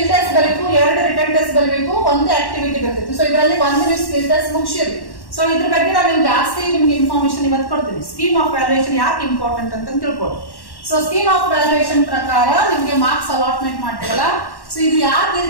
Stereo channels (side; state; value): right; late; 1.1 ms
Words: ಟೆಸ್ಟ್ ಬರಬೇಕು, 2 ರಿಟರ್ನ್ ಟೆಸ್ಟ್ ಬರಬೇಕು, 1 ಆಕ್ಟಿವಿಟಿ ಬರ್ತೈತಿ. ಸೊ ಇದರಲ್ಲಿ 1 ನೀವು ಸ್ಕಿಲ್ ಟೆಸ್ಟ್ ಮುಗಿಸಿರಿ. ಸೊ ಇದ್ರ ಬಗ್ಗೆ ನಾನು ಜಾಸ್ತಿ ನಿಮ್ಗೆ ಇನ್ಫಾರ್ಮೇಶನ್ ಇವತ್ತು ಕೊಡ್ತೀನಿ. ಸ್ಕೀಮ್ ಆಫ್ ವ್ಯಾಲ್ಯೂಯೇಷನ್ ಯಾಕೆ ಇಂಪಾರ್ಟೆಂಟ್ ಅಂತ ತಿಳ್ಕೊಳ್ಳಿ. ಸೊ ಸ್ಕೀಮ್ ಆಫ್ ವ್ಯಾಲ್ಯೂಯೇಷನ್ ಪ್ರಕಾರ ನಿಮ್ಗೆ ಮಾರ್ಕ್ಸ್ ಅಲಾಟ್ಮೆಂಟ್ ಮಾಡ್ತೀವಲ್ಲ, ಸೊ ಇದು ಯಾಕೆ ಈ